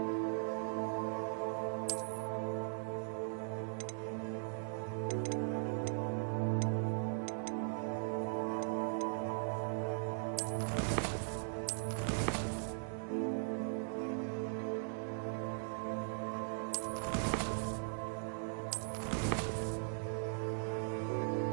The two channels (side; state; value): left; silent; digital silence